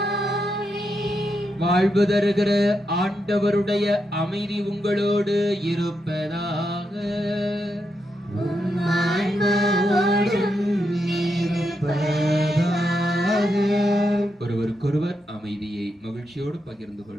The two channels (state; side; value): normal; both; correlation 0.83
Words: வாழ்வு தருகிற ஆண்டவருடைய அமைதி உங்களோடு இருப்பதாக. ஒருவருக்கொருவர் அமைதியை மகிழ்ச்சியோடு பகிர்ந்து